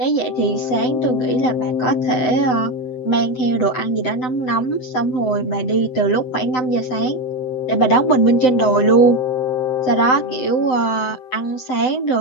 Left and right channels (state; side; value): late; right; 7.8 ms